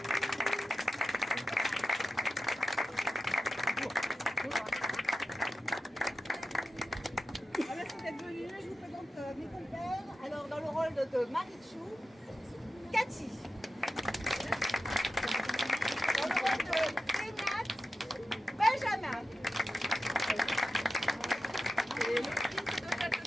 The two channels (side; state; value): both; normal; correlation 0.91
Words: Merci d'être venus. Je vous présente mes compères. Alors, dans le rôle de Marichou, Cathy. Dans le rôle de Pénat, Benjamin. Et l'autrice de